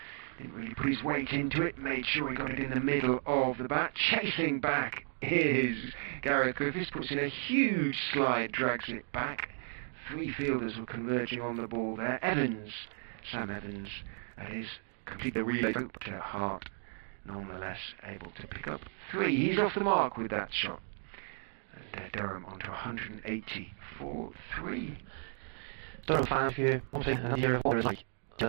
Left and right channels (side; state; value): left; silent; 55 dB below the other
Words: Didn't really put his weight into it, made sure he got it in the middle of the bat. Chasing back is Gareth Griffiths, puts in a huge slide, drags it back. 3 fielders were converging on the ball there. Sam Evans, that is, complete the relay, but Hart nonetheless able to pick up 3. He's off the mark with that shot. And Durham onto 180 for 3. Durham fan, if you want to see another year of war is like